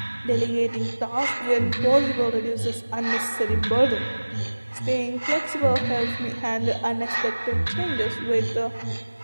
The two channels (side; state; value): both; inverted; correlation -1.00